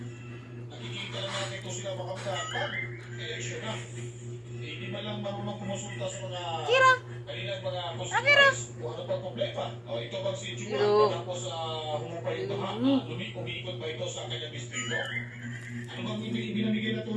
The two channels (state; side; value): identical; both; correlation 1.00